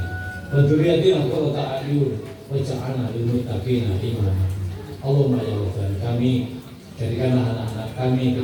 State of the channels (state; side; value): identical; both; correlation 1.00